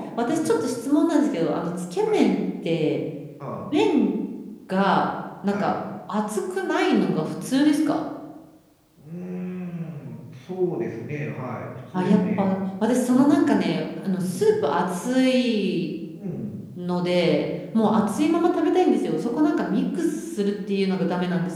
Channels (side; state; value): both; identical; correlation 1.00